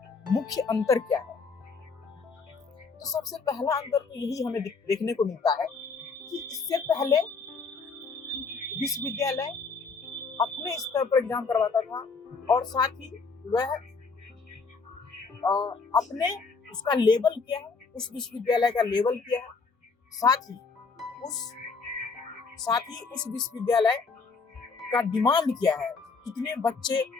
मुख्य अंतर क्या है? तो सबसे पहला अंतर तो यही हमें देखने को मिलता है कि इससे पहले विश्वविद्यालय अपने स्तर पर एग्जाम करवाता था और साथ ही वह अपने उसका लेवल क्या है, उस विश्वविद्यालय का लेवल क्या है, साथ ही उस विश्वविद्यालय का डिमांड क्या है, कितने बच्चे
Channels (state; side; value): quieter; right; 4.7 dB